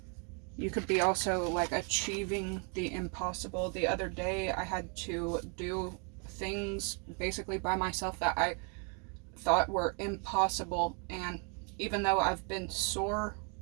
You could be also like achieving the impossible. The other day I had to do things basically by myself that I thought were impossible, and even though I've been sore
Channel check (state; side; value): quieter; left; 37.4 dB